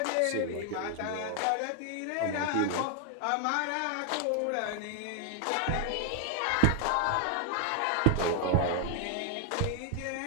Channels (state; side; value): different; both; correlation 0.00